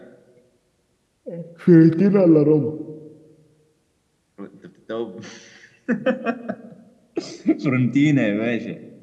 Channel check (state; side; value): identical; both; correlation 1.00